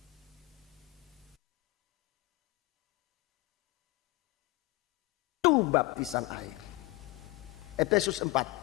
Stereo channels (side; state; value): right; quieter; 20.8 dB